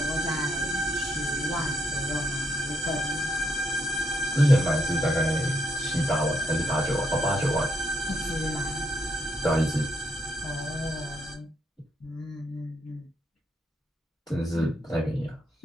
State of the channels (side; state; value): both; normal; correlation 0.77